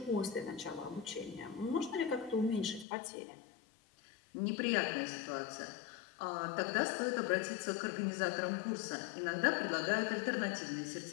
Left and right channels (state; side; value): drops out; right; at 2.9 s